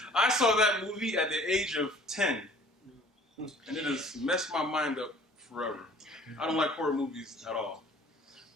I saw that movie at the age of 10, and it has messed my mind up forever. I don't like horror movies at all.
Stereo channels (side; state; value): both; normal; correlation 0.51